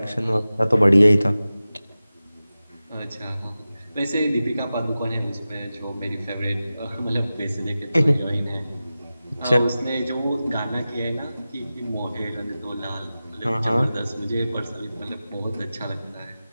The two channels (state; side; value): inverted; both; correlation -0.95